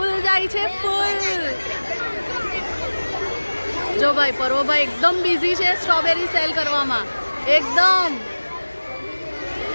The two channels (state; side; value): inverted; both; correlation -1.00